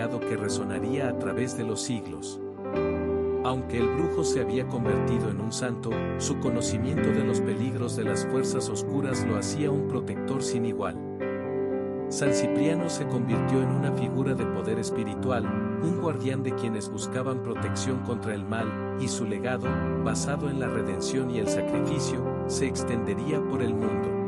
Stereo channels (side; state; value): both; identical; correlation 1.00